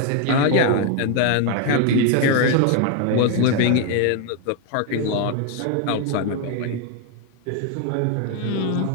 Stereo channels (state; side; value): different; both; correlation 0.01